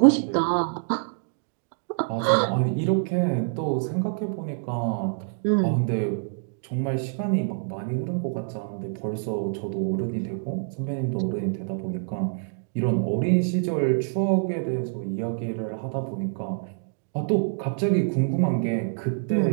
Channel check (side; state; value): left; silent; 61 dB below the other